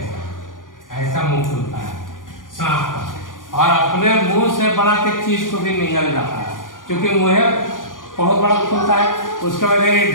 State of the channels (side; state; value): right; late; 0.89 ms